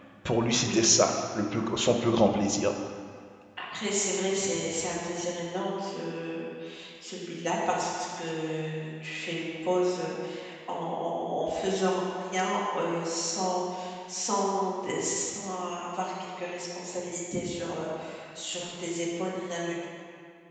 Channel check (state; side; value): identical; both; correlation 1.00